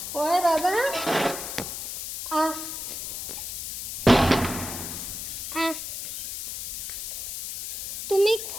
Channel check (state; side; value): noise; left; hiss, 6 dB below the sound